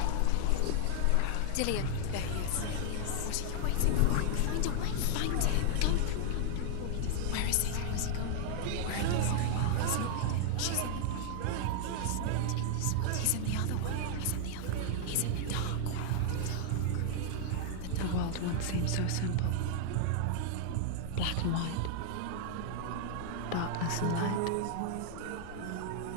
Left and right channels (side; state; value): both; different; correlation 0.00